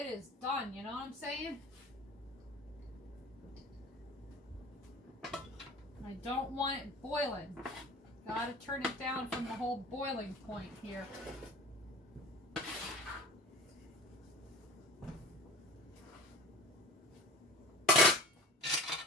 is done, you know what I'm saying? I don't want it boiling. Gotta turn it down from the whole boiling point here.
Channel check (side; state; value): both; normal; correlation 0.38